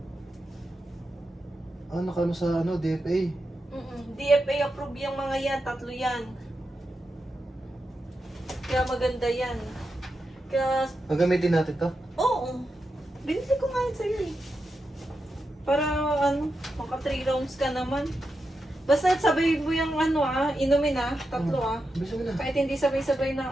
Ano ka sa DFA? DFA approve yung mga yan, tatlo yan. Kaya maganda yan. Kaya, Gagamitin natin to? oo. Binili ko nga yan sa'yo eh. Para maka 3 rounds ka naman. Basta sabay mo yung inumin tatlo Bisa mo na. Kahit hindi sabay-sabay na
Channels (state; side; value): normal; both; correlation 0.88